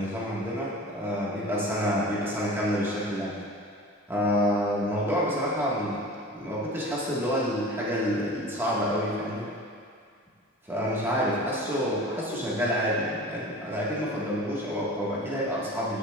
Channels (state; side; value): normal; both; correlation 0.38